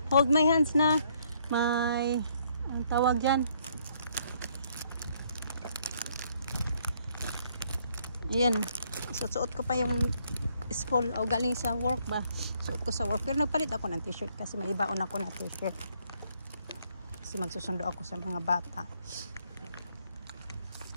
Hold my hands na. May... Ang tawag dyan. Ayan. Suot ko pa yung school. O galing sa work ba. Suot ko sa work. Pero nagpalit ako ng t-shirt kasi may ibaon ako na t-shirt. Kasi magsusundo ako sa mga bata.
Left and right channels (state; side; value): inverted; both; correlation -0.68